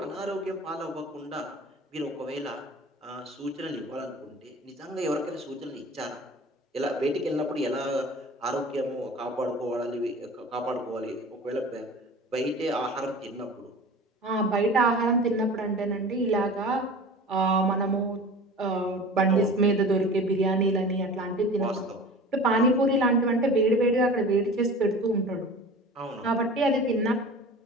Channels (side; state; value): both; normal; correlation 0.39